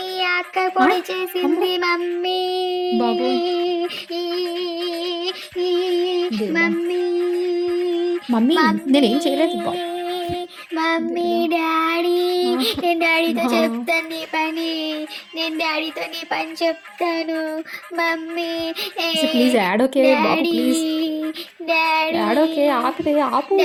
అక్క పొడి చేసింది. మమ్మీ బాబోయ్. మమ్మీ మమ్మీ నేనేం చేయలేదు బాబు. మమ్మీ డాడీ, నేను డాడీతో చెప్తాను నీ పని. నేను డాడీతో నీ పని చెప్తాను. Mummy please add okay Babu, please daddy add okay. ఆపితే ఆపు.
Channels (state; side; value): identical; both; correlation 1.00